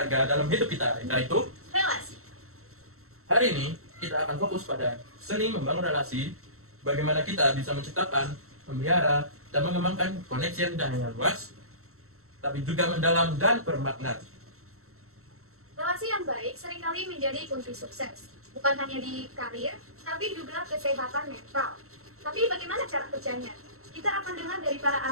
dalam hidup kita, yaitu Relasi. hari ini kita akan fokus pada seni membangun relasi, bagaimana kita bisa menciptakan, memelihara, dan mengembangkan koneksi yang tidak hanya luas, tapi juga mendalam dan bermakna. Relasi yang baik seringkali menjadi kunci sukses, bukan hanya di karir, tapi juga kesehatan mental. Tapi bagaimana cara kerjanya? Kita akan dengar dari para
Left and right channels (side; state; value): left; late; 0.63 ms